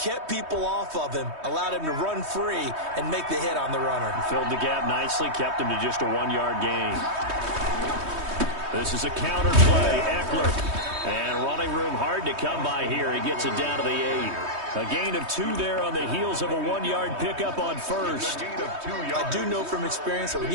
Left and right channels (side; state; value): left; late; 3.2 ms